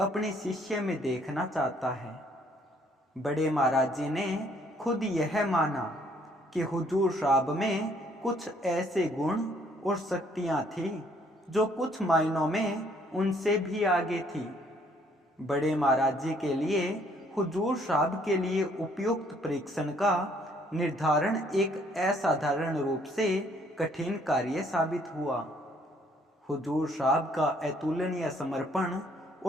शिष्य में देखना चाहता है। बड़े महाराज जी ने खुद यह माना कि हुजूर साहब में कुछ ऐसे गुण और शक्तियां थी जो कुछ मायनों में उनसे भी आगे थी। बड़े महाराज जी के लिए हुजूर साहब के लिए उपयुक्त परीक्षण का निर्धारण एक असाधारण रूप से कठिन कार्य साबित हुआ। हुजूर साहब का अतुलनीय समर्पण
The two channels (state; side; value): normal; both; correlation 0.64